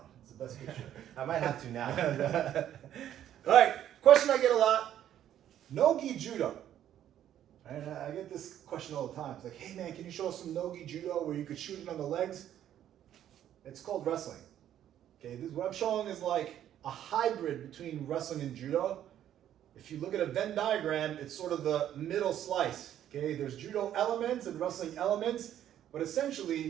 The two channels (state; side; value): quieter; left; 11.0 dB